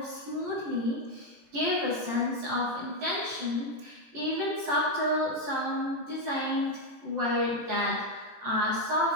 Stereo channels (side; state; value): left; late; 18 ms